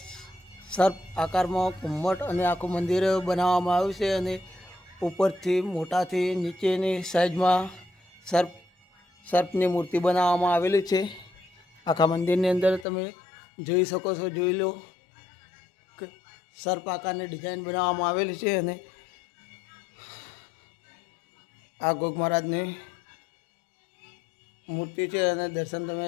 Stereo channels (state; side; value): drops out; right; at 12.9 s